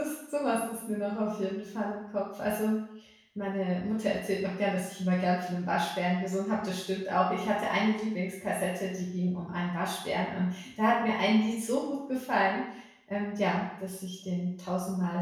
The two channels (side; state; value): both; identical; correlation 1.00